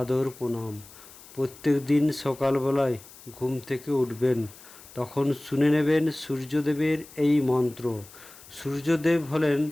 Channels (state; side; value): noise; left; hiss, 20 dB below the sound